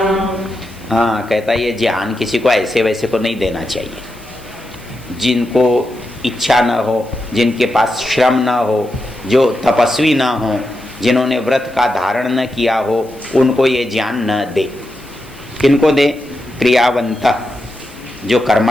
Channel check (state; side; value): noise; left; hiss, 27 dB below the sound